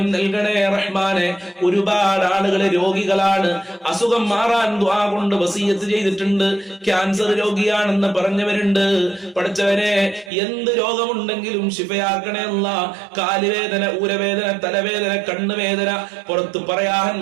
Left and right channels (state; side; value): drops out; left; at 10.3 s